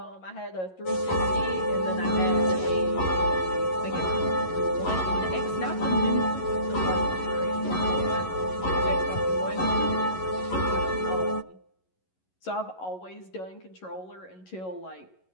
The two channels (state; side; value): late; right; 11 ms